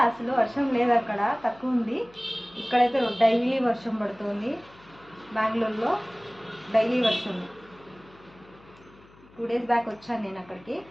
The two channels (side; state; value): left; noise; hum, 26 dB below the sound